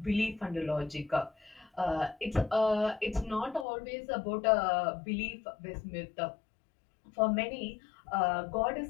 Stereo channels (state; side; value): drops out; right; at 3.7 s